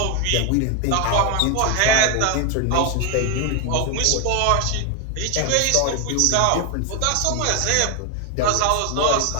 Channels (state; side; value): different; both; correlation 0.01